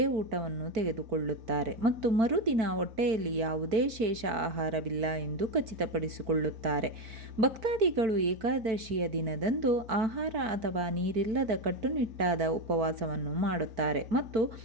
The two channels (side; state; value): left; late; 4.5 ms